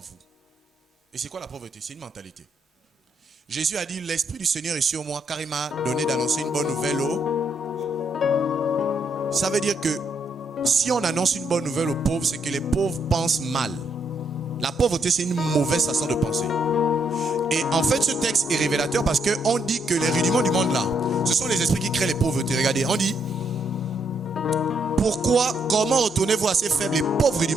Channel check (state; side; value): normal; both; correlation 0.75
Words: Et c'est quoi la pauvreté? C'est une mentalité. Jésus a dit: l'Esprit du Seigneur est sur moi car il m'a donné d'annoncer une bonne nouvelle Ça veut dire que si on annonce une bonne nouvelle aux pauvres, c'est que les pauvres pensent mal. La pauvreté, c'est une mauvaise façon de penser. Et en fait, ce texte est révélateur parce qu'on dit que les rudiments du monde là, ce sont les esprits qui créent les pauvretés. Regardez, on dit: comment retournez-vous à ces faibles et pauvres